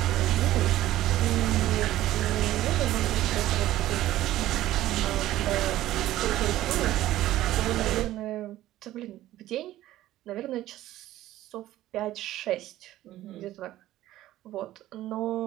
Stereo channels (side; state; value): left; quieter; 14.7 dB